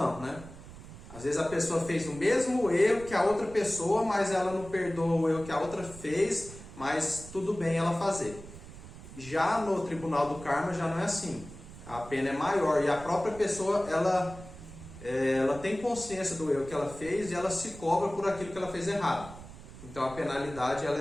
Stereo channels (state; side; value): noise; right; rumble, 15 dB below the sound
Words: né? Às vezes a pessoa fez o mesmo erro que a outra pessoa, mas ela não perdoa o erro que a outra fez, mas tudo bem ela fazer. Já no Tribunal do Karma já não é assim. A pena é maior e a própria pessoa ela tem consciência do erro que ela fez e ela se cobra por aquilo que ela fez errado. Então a penalidade